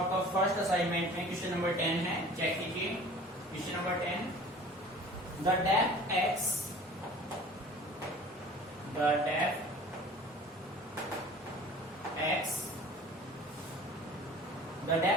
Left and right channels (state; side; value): normal; both; correlation 0.44